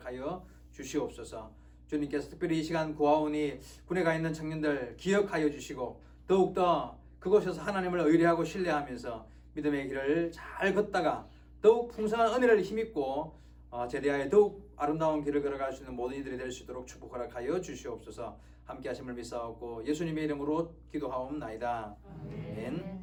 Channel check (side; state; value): both; identical; correlation 1.00